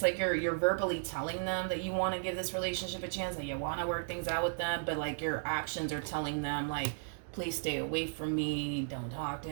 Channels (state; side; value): silent; left; digital silence